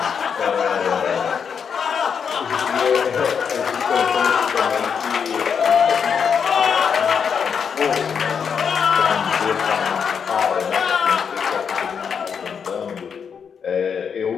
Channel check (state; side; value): quieter; right; 6.8 dB